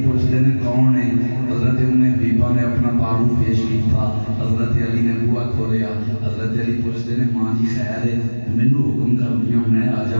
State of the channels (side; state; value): both; inverted; correlation -1.00